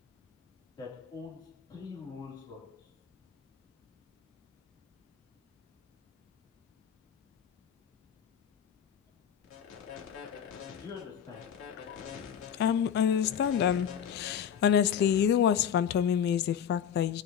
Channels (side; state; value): right; quieter; 8.5 dB